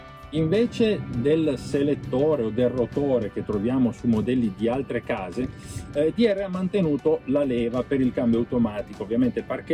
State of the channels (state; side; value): identical; both; correlation 1.00